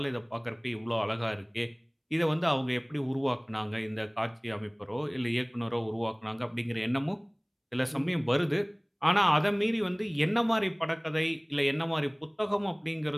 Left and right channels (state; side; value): identical; both; correlation 1.00